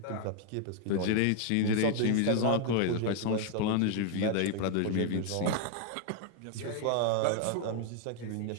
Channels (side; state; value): both; different; correlation 0.00